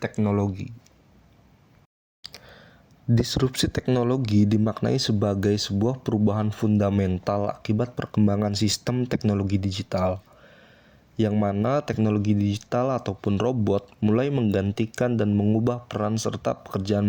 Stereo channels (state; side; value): identical; both; correlation 1.00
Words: Disrupsi teknologi dimaknai sebagai sebuah perubahan fundamental akibat perkembangan sistem teknologi digital, yang mana teknologi digital ataupun robot mulai menggantikan dan mengubah peran serta pekerjaan